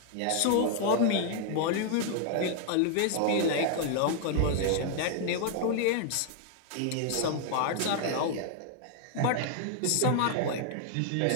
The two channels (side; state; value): both; different; correlation 0.00